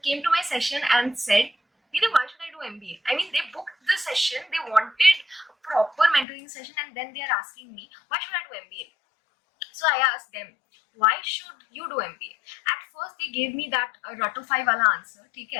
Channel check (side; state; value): right; drops out; at 6.2 s